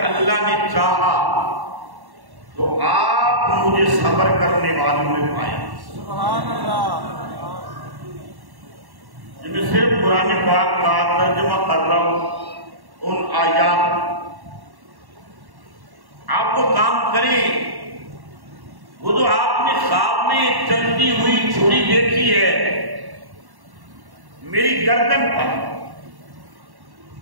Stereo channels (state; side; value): late; left; 1.1 ms